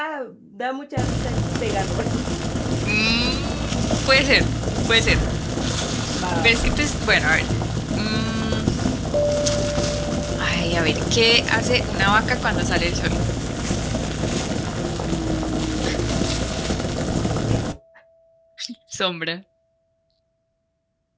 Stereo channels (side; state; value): both; identical; correlation 1.00